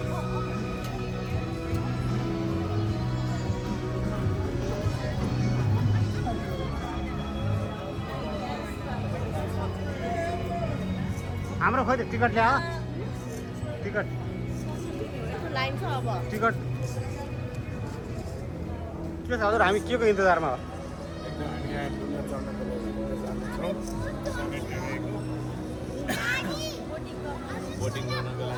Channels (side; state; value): both; identical; correlation 1.00